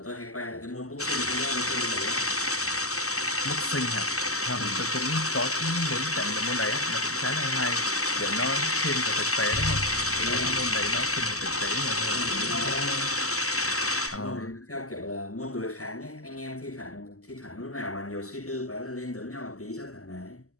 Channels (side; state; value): right; late; 0.65 ms